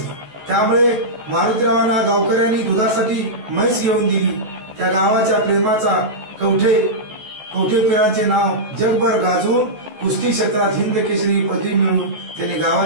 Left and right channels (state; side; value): late; left; 14 ms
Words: त्यामुळे मारुतीरावांना गावकऱ्यांनी दुधासाठी म्हैस घेऊन दिली। त्या गावाच्या प्रेमाचा कवठेपिरांचे नाव जगभर गाजवून कुस्ती क्षेत्रात हिंद केसरी पदवी मिळवून त्यांनी